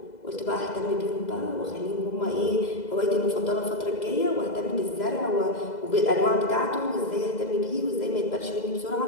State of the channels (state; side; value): late; right; 2.0 ms